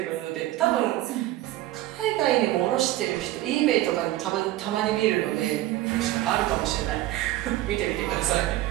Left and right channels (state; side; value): quieter; left; 15.5 dB